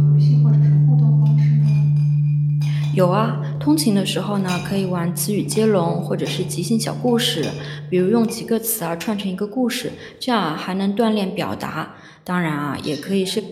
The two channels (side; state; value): both; identical; correlation 1.00